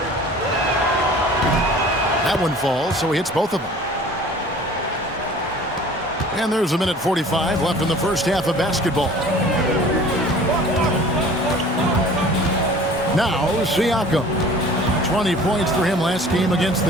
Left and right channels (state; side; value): normal; both; correlation 0.46